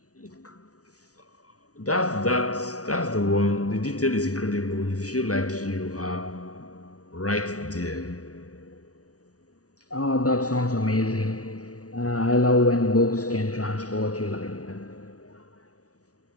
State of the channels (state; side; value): late; right; 0.67 ms